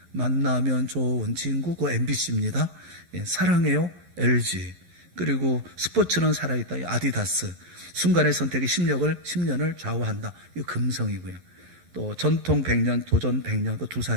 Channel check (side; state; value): left; late; 11 ms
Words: 만나면 좋은 친구, 그 MBC입니다. 사랑해요, LG. 그리고 스포츠는 살아있다, 아디다스. 순간의 선택이 10년을 좌우한다, 이 금성이고요. 또 전통 100년, 도전 100년, 그